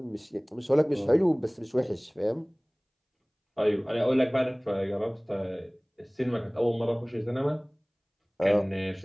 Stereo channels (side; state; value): both; identical; correlation 1.00